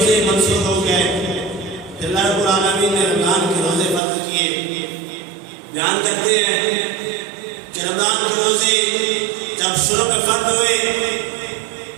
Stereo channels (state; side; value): drops out; left; at 4.0 s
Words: منسوخ ہو گئے۔ پھر اللہ رب العالمین نے رمضان کے روزے فرض کیے۔ بیان کرتے ہیں کہ رمضان کے روزے جب شروع میں فرض ہوئے